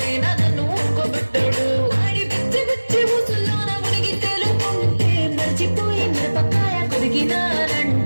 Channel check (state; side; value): inverted; both; correlation -1.00